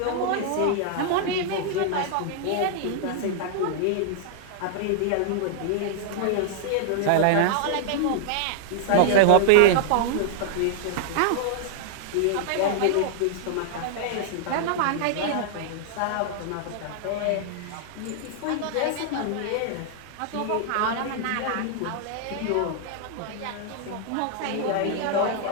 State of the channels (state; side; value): different; both; correlation -0.01